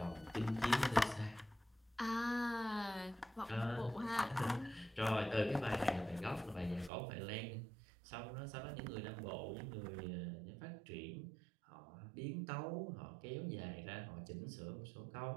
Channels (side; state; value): left; drops out; at 6.9 s